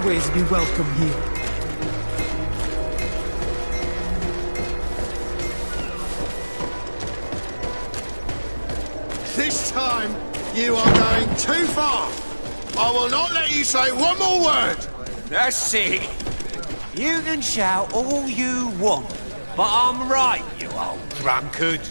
be welcome here. This time, you are going too far. I will not let you say one more word. That's it. You can shout all you want, but I'm right, you old drunkard.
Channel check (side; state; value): both; inverted; correlation -1.00